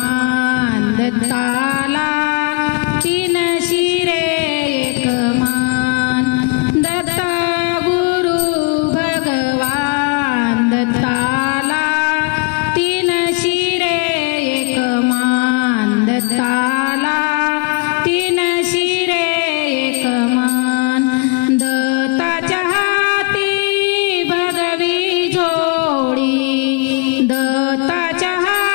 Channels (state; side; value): quieter; right; 33.1 dB